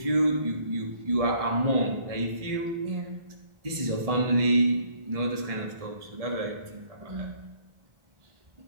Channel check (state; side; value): late; left; 1.7 ms